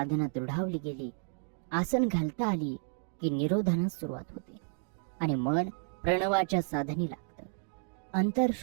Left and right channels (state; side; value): silent; left; digital silence